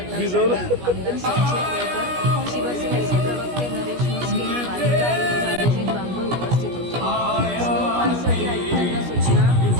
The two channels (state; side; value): late; left; 17 ms